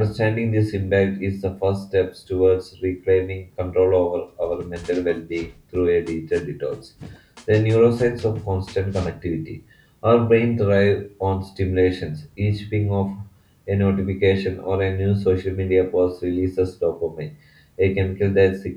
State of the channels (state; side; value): identical; both; correlation 1.00